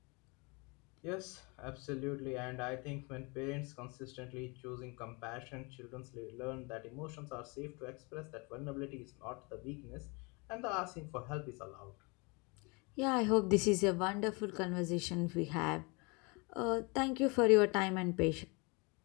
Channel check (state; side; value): quieter; right; 29.5 dB